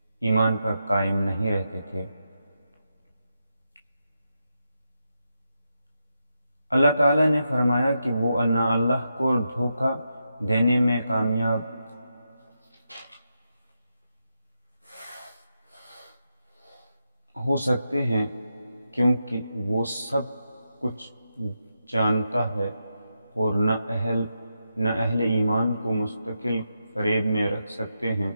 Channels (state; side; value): inverted; both; correlation -0.86